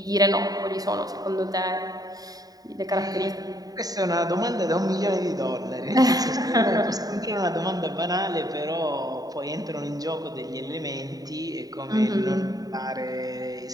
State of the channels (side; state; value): left; late; 0.18 ms